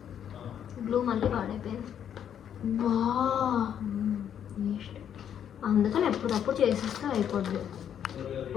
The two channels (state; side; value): quieter; right; 9.2 dB